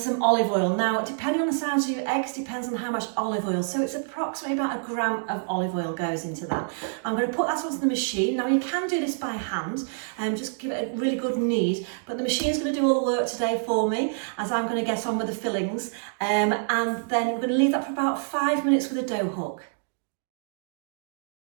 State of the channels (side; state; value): left; silent; digital silence